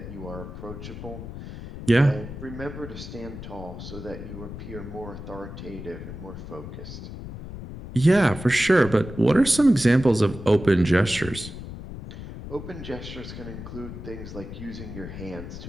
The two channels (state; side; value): noise; left; rumble, 11 dB below the sound